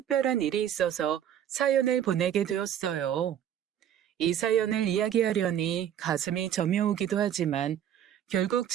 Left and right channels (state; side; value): quieter; left; 10.1 dB